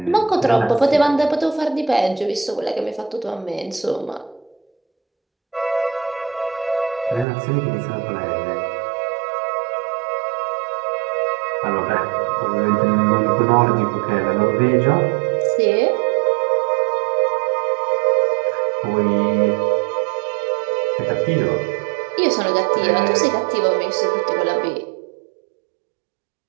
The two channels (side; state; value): left; drops out; at 7.2 s